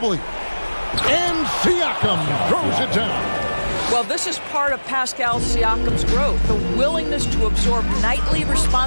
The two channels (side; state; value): both; inverted; correlation -1.00